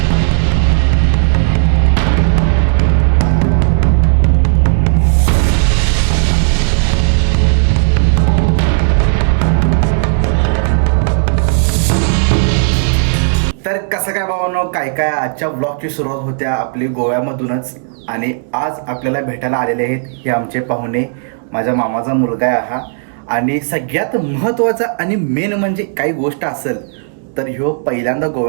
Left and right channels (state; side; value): silent; left; digital silence